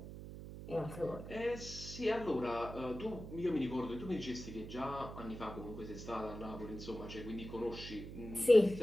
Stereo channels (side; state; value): right; noise; hum, 11 dB below the sound